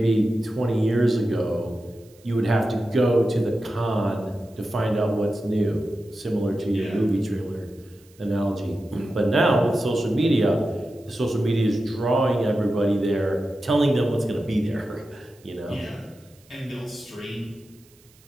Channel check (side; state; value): right; noise; hiss, 29 dB below the sound